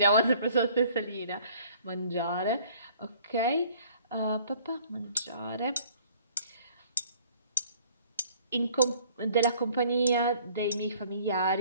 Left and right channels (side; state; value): both; inverted; correlation -0.56